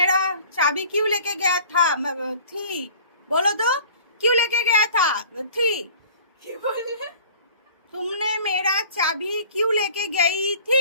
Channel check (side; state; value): both; inverted; correlation -0.46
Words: चाबी क्यों लेके गया था? थी, बोलो तो, क्यों लेके गया था? थी, क्या बोले? तुमने मेरा चाबी क्यों लेके गई